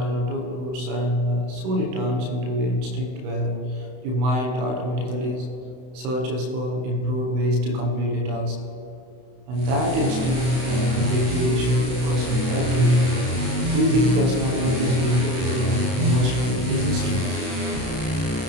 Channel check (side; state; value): left; late; 32 ms